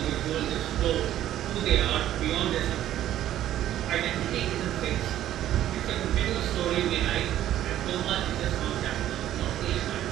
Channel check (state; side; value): quieter; left; 12.4 dB